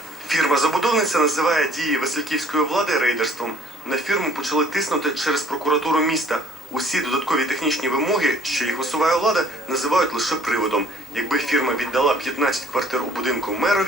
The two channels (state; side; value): normal; both; correlation 0.57